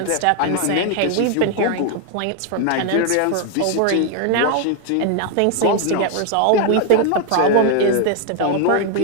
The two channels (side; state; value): both; different; correlation 0.00